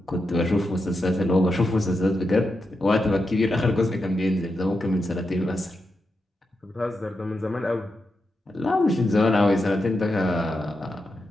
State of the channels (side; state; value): both; normal; correlation 0.87